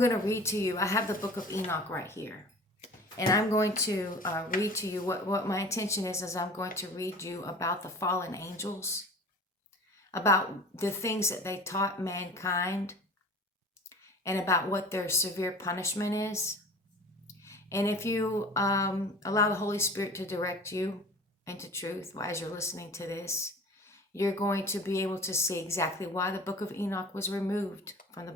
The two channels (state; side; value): normal; both; correlation 0.40